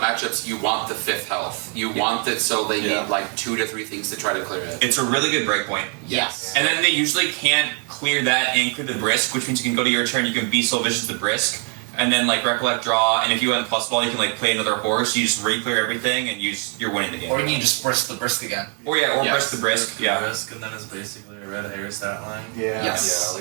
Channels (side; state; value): left; quieter; 37.8 dB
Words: you want the 5th health. You want it so they need like 2 to 3 things to try to clear it. it's a really good breakpoint. Yes. And then they usually can't clear that and clear the Brisk, which means you can go to your turn, you can be so vicious the Brisk, and then like Recollect draw, and if you have plus ball, you can like play another horse, you just re-clear everything, and you're winning the game. Or you can just brisk the brisk again. Or Brisk the Brisk, yeah. Risk, and then it's basically a red hair stat line. Yeah. Yes. Yeah,